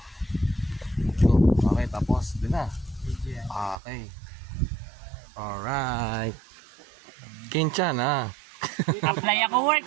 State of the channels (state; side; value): drops out; left; at 3.8 s